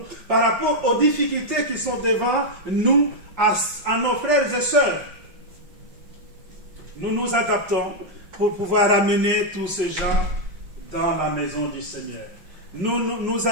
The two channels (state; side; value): late; left; 5.6 ms